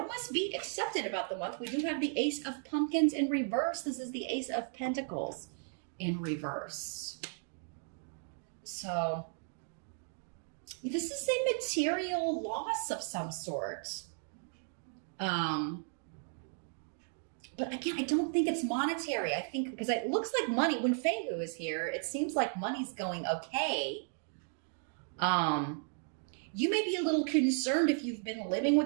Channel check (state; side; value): silent; left; 54 dB below the other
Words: must be accepted about the month? We do have the Ace of Pumpkins in reverse. This is the Ace of Pentacles in reverse. So this is a material loss of some sort. But again, I don't think it's monetary. I think because it looks like money, when Fehu is here, it seems like money's going okay. You may be a little concerned if you've been living